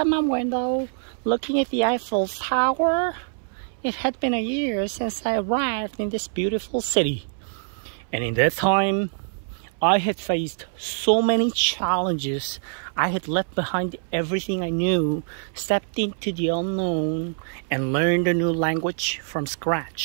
my window, looking at the Eiffel Tower. It had been a year since I arrived in this beautiful city. And in that time, I had faced so many challenges. I had left behind everything I knew, stepped into the unknown, and learned a new language from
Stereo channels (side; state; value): left; silent; 62 dB below the other